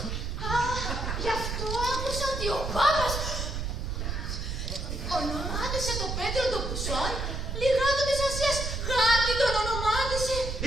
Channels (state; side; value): noise; right; rumble, 3 dB below the sound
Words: Α, γι' αυτό άκουσα ότι ο Πάπας ονομάτισε τον Πέτρο τον Πουσόν, λιγάτο της Ασίας, γάτι τον ονομάτισε.